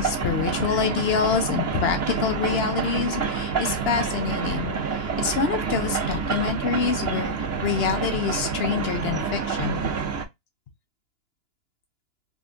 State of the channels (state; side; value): late; right; 2.9 ms